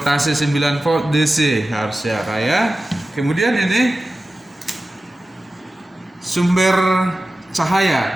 9 volt DC harusnya ya. Kemudian ini sumber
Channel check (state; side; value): normal; both; correlation 0.94